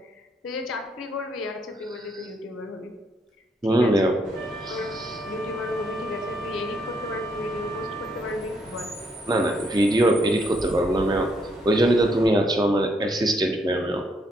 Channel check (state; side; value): normal; both; correlation 0.73